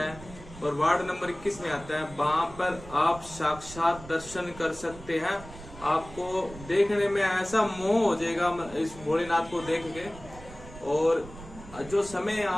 और वार्ड नंबर 21 में आता है। वहां पर आप साक्षात दर्शन कर सकते हैं। आपको देखने में ऐसा मोह हो जाएगा इस भोलेनाथ को देख के। और जो समय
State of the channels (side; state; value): right; noise; rumble, 16 dB below the sound